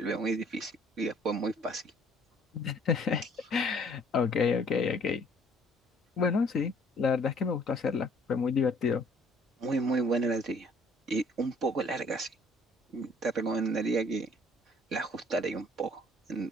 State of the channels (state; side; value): normal; both; correlation 0.59